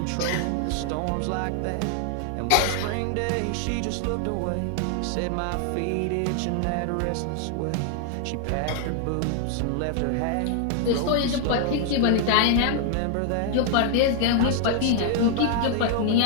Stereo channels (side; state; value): both; different; correlation 0.00